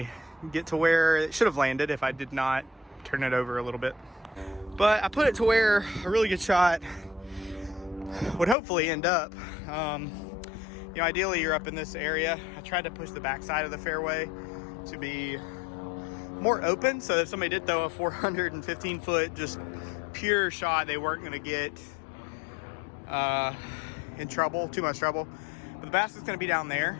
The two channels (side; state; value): right; drops out; at 8.6 s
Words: get to where it should have landed if I did not turn it over a little bit. But I put it to where a really good shot would hopefully end up. Ideally you're up in this area. I tried to push the backside of the fairway to be more open, so if somebody did throw a 415-foot just pure shot, they weren't going to get in trouble, too much trouble. But the basket's going to be down